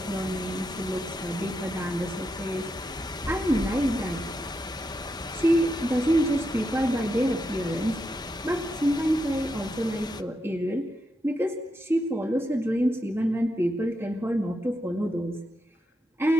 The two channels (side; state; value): both; normal; correlation 0.84